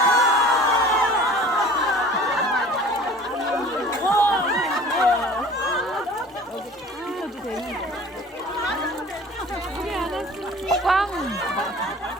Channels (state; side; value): normal; both; correlation 0.45